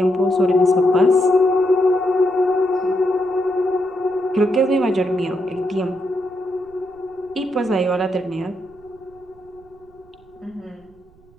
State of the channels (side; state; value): right; noise; rumble, 29 dB below the sound